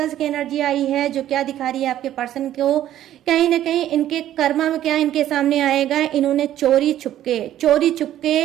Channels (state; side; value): quieter; left; 12.3 dB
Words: की एनर्जी आई है जो क्या दिखा रही है आपके पर्सन को, कहीं ना कहीं इनके कर्मा में क्या इनके सामने आएगा, इन्होंने चोरी